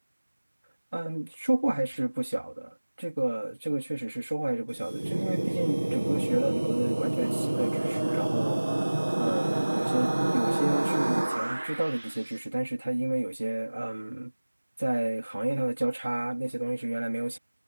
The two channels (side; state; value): both; inverted; correlation -1.00